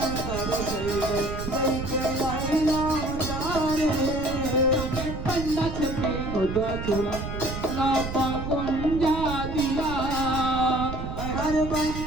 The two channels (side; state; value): right; noise; rumble, 6 dB below the sound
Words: আইলাম তারে पंडा छपे उदा चूड़ा ना पाकुंजा दिया हर